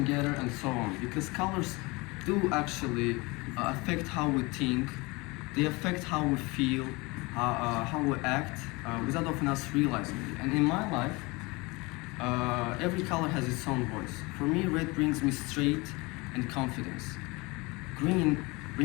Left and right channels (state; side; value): quieter; right; 25.1 dB